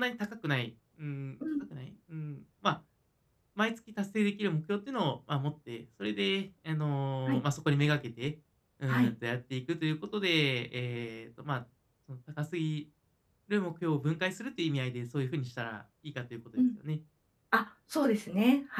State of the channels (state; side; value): identical; both; correlation 1.00